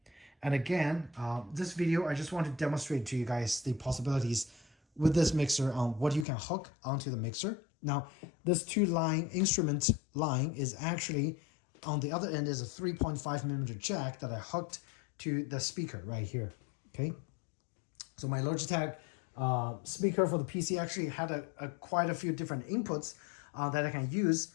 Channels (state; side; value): drops out; right; at 6.2 s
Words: And again, this video, I just want to demonstrate to you guys the possibilities with this mixer on what you can hook onto the mixer. Now, this 2-line instrument line is actually, on the other end is a 3.5mm jack that I hooked to the speaker right here, okay? So my Logitech speaker for the PC actually had quite a few different inputs that I can use.